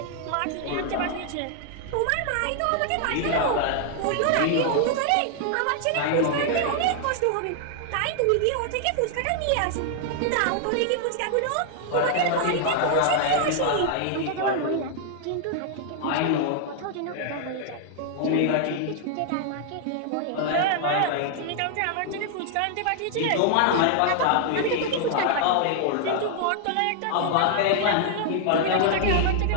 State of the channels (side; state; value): both; different; correlation 0.00